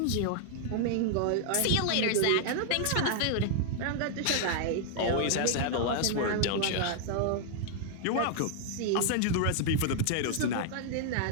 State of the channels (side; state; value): both; different; correlation 0.00